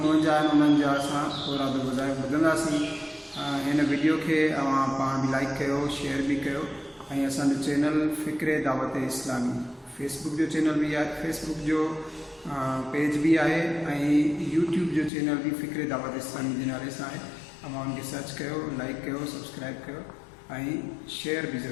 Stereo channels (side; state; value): right; drops out; at 15.1 s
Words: 49 आहिनि उन्हनि जा असां औराद वज़ाइफ़ ॿुधंदासीं। हिन वीडियो के पाण भी लाइक कयो, शेयर भी कयो ऐं असांजो चैनल फ़िक्र दावत इस्लामी फेसबुक जो चैनल भी आहे, फेसबुक जो पेज भी आहे ऐं यूट्यूब जो चैनल भी फ़िक्र दावत इस्लामी जे नाले सां आहे। तव्हां उनखे सर्च कयो, लाइक कयो, सब्सक्राइब कयो ऐं शेयर भी